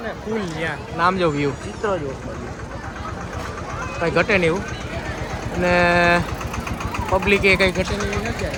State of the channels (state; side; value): identical; both; correlation 1.00